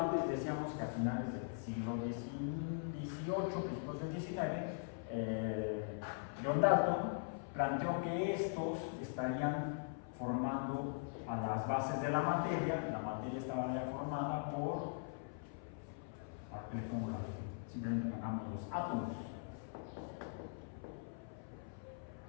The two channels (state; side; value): silent; right; 50 dB below the other